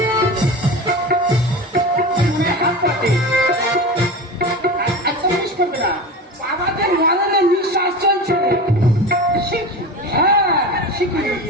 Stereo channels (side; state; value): both; normal; correlation 0.29